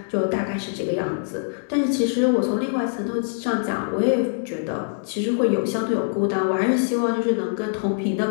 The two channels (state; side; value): silent; right; digital silence